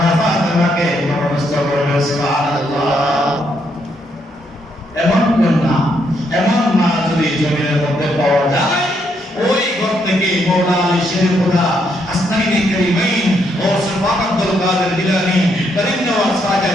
ফাতিমাকে নমস্ত করবে। সুবহানাল্লাহ। এমন কন্যা, এমন মা যদি জমিনের মধ্যে পাওয়া যায়, ওই ঘর থেকে মওলা আলী শের খোদা আসনাইনে কারিমাইন ও সুলতান আব্দুল কাদের জিলানী, করিম নওয়াজ খাজা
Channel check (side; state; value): both; normal; correlation 0.76